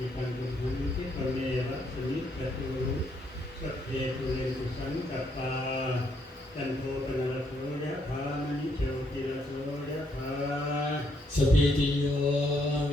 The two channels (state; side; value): normal; both; correlation 0.73